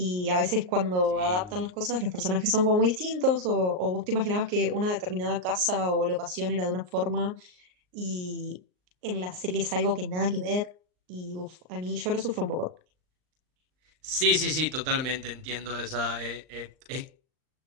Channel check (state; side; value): late; left; 39 ms